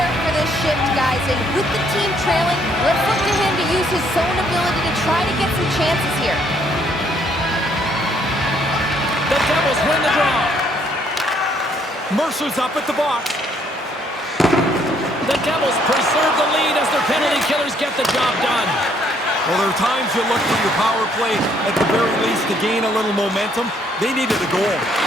for this shift, guys, and with the team trailing, let's look to him to use his zone ability to try to get some chances here. The Devils win the draw. Mercer's up at the box. The Devils preserve the lead as their penalty killers get the job done. Well, there are times you look for your power play at the very least to gain a little momentum. They needed a goal.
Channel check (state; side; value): normal; both; correlation 0.67